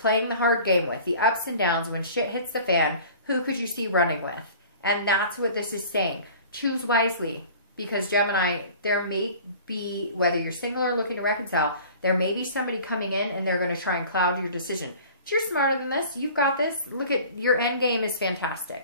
the hard game with? The ups and downs, when shit hits the fan, who could you see running with? And that's what this is saying. Choose wisely. Because Gemini, there may be, whether you're single or looking to reconcile, there may be somebody coming in and they're going to try and cloud your decision. But you're smarter than this. You've got this. Look at your end game is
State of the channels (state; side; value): inverted; both; correlation -0.44